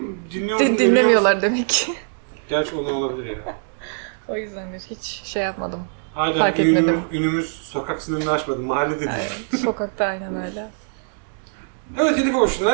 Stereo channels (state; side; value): silent; left; digital silence